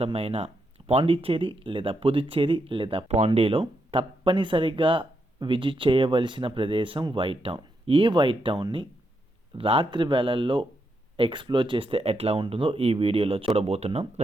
పాండిచ్చేరి లేదా పుదుచ్చేరి లేదా పాండీలో తప్పనిసరిగా విజిట్ చేయవలసిన ప్రదేశం వైట్ టౌన్. ఈ వైట్ టౌన్ని రాత్రి వేళల్లో ఎక్స్ప్లోర్ చేస్తే ఎట్లా ఉంటుందో ఈ వీడియోలో చూడబోతున్నాం.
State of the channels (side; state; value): both; normal; correlation 0.81